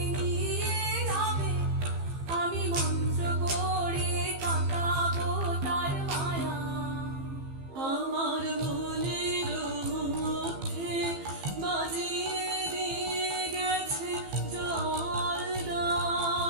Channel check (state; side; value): late; left; 15 ms